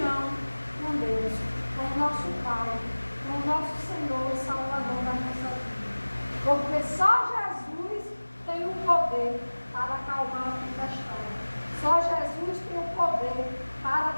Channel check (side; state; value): both; inverted; correlation -1.00